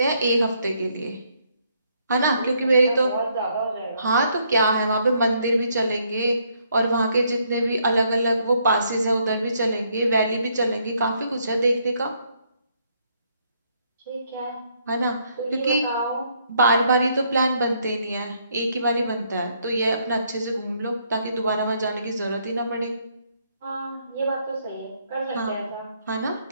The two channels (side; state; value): both; inverted; correlation -0.71